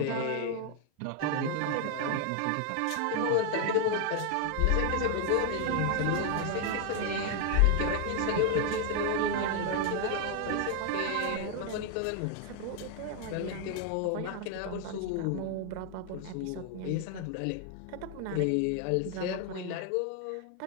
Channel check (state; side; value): different; both; correlation 0.01